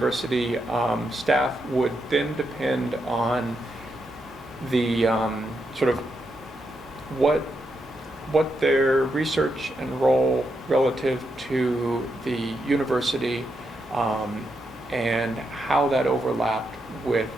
staff would then depend on the sort of what their research and role relative to the university and how that overlapped with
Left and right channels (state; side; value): normal; both; correlation 0.82